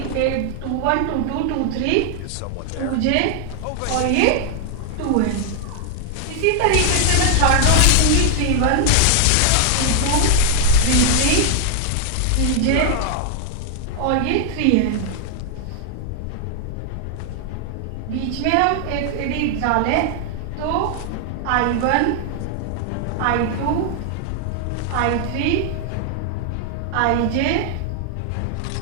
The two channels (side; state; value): both; different; correlation 0.00